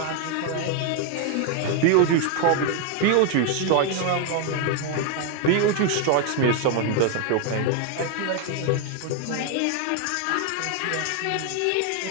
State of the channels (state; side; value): different; both; correlation 0.01